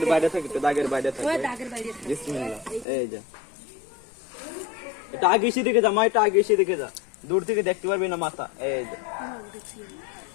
বাইরে থাকে, একটু দাগের বাইরে থাকে। বিসমিল্লাহ। এই যে এটা আগে এসে দেখে যা মা, এটা আগে এসে দেখে যা, দূর থেকে দেখতে পারবি না মাথা। এই যে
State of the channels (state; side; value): drops out; right; at 2.9 s